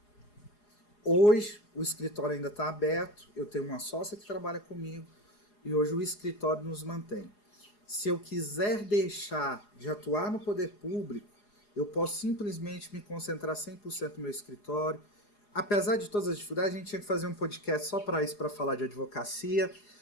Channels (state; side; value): late; right; 4.8 ms